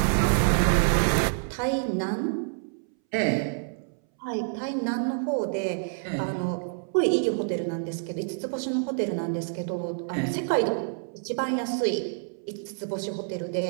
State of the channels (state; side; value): silent; left; 59 dB below the other